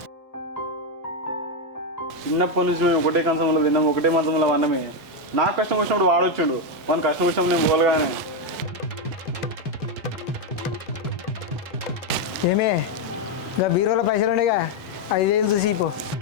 చిన్నప్పటి నుంచి మేము ఒకటే కంచంలో తిన్నాం, ఒకటే మంచంలో అన్నమే. నాకు కష్టం వచ్చినప్పుడు వాడు వచ్చిండు, మన కష్టం వచ్చినప్పుడు నేను పోలగానే. ఏమే ఇంకా బీరోలో పైసలు ఉండేగా, 5,000 చూసి పో.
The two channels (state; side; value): normal; both; correlation 0.05